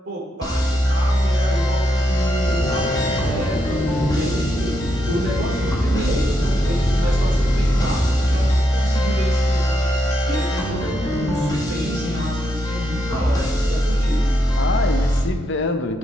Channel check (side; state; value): both; normal; correlation 0.81